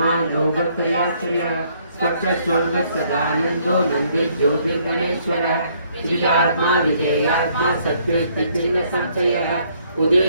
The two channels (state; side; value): inverted; both; correlation -0.66